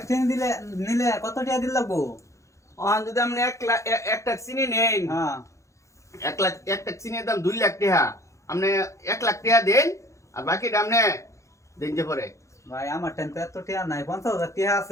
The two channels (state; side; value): late; right; 0.15 ms